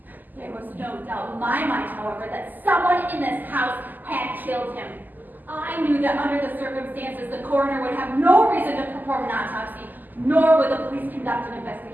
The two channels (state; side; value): late; left; 0.086 ms